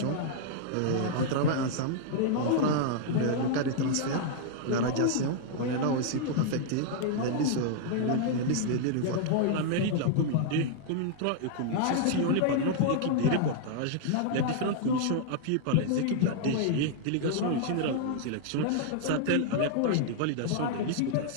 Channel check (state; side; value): different; both; correlation -0.01